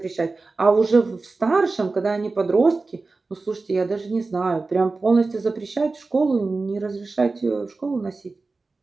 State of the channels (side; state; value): left; quieter; 3.7 dB